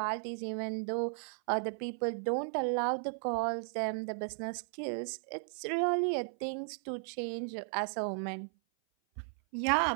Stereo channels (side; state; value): left; silent; 54 dB below the other